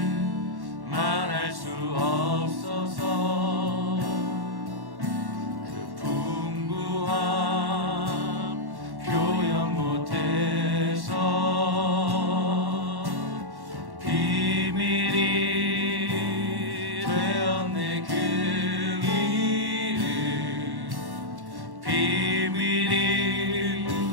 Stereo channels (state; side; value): late; left; 1.1 ms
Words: 말할 수 없어서 그 풍부함 표현 못해서 비밀이 되었네. 그 이름 비밀이